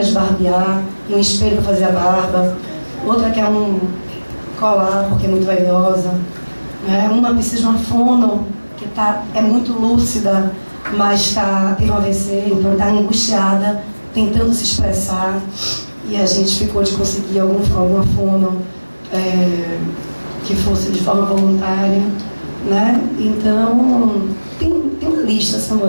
de barbear e um espelho para fazer a barba. Outra quer um colar porque é muito vaidosa. Uma precisa de uma fono que é muito lúcida, mas teve um AVC, então está angustiada, tentando se expressar. E a gente ficou de conseguir alguma fono que fosse de forma voluntária, né? Então, tem uma lista,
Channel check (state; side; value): inverted; both; correlation -1.00